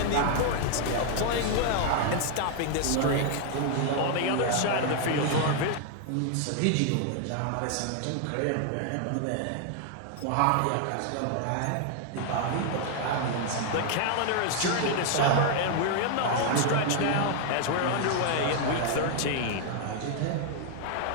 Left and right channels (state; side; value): different; both; correlation 0.00